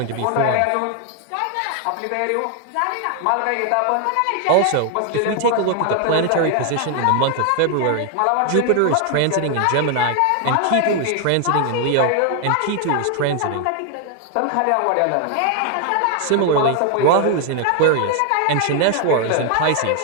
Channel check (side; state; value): both; different; correlation 0.00